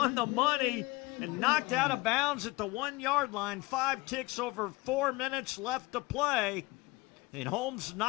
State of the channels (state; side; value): quieter; right; 22.8 dB